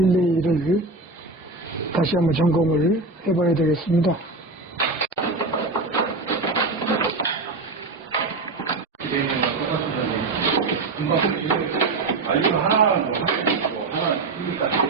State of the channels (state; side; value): quieter; left; 3.5 dB